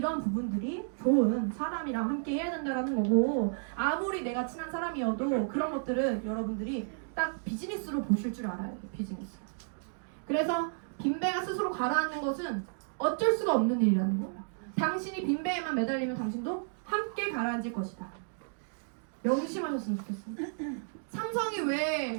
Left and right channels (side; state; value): left; silent; digital silence